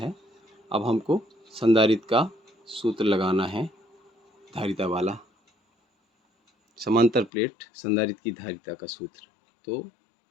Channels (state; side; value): drops out; right; at 7.3 s